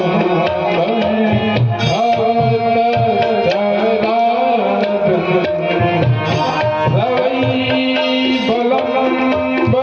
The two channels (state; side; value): identical; both; correlation 1.00